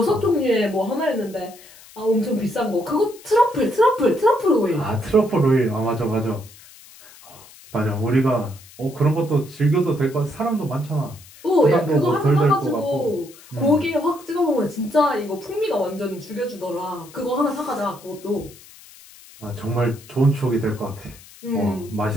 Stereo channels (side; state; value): left; noise; hiss, 22 dB below the sound